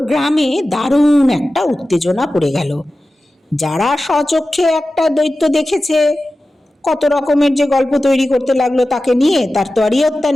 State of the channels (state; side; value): normal; both; correlation 0.94